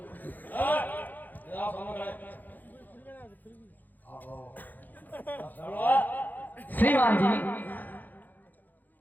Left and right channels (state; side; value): late; right; 0.085 ms